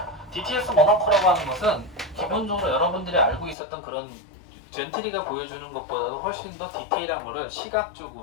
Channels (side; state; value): right; drops out; at 3.6 s